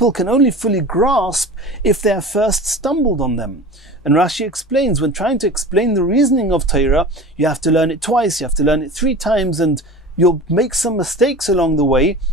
can only fully grasp if they have first stumbled on them. And Rashi explains, when trying to explain the reasoning of Torah, you have to learn it twice, you have to learn it 3 times, and you'll make some mistakes along the way,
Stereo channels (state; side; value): normal; both; correlation 0.36